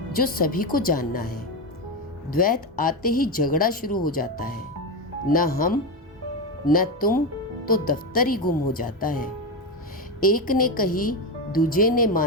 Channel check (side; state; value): both; normal; correlation 0.13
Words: जो सभी को जानना है। द्वैत आते ही झगड़ा शुरू हो जाता है, न हम न तुम, तो दफ्तर ही गुम हो जाता है। एक ने कही दूजे ने